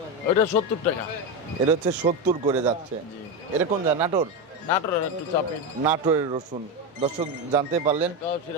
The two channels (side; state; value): both; normal; correlation 0.13